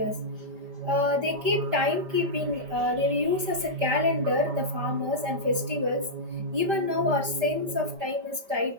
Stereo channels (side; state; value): left; late; 5.1 ms